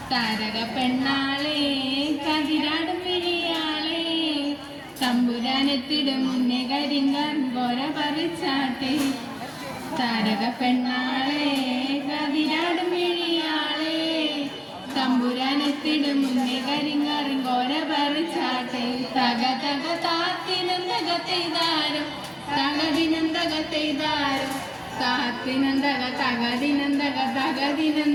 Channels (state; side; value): identical; both; correlation 1.00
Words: താരക പെണ്ണാളെ കതിരാടും വിഴിയാളെ തമ്പുരാനെത്തിടും മുന്നേ കരിങ്ങാൻ പോര പറിച്ചാട്ടെ താരക പെണ്ണാളെ കതിരാടും വിഴിയാളെ തമ്പുരാനെത്തിടും മുന്നേ കരിങ്ങാറും കോര പറിച്ചാട്ടെ തക തക താത്തിനന്തക തെയ്താരോ തകതിനന്തക തെയ്താരോ താത്തിനന്തക തകതിനന്തക